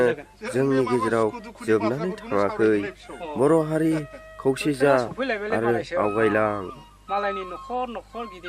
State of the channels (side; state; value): both; identical; correlation 1.00